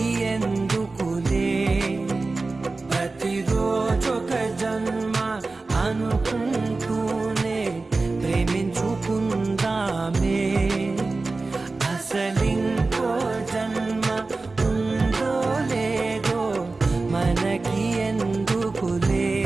ఎందుకులే ప్రతిరోజొక జన్మ అనుకుంటూనే ప్రేమించుకుందామే అసలింకో జన్మ ఉందో లేదో మనకి ఎందుకులే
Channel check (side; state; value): left; quieter; 3.6 dB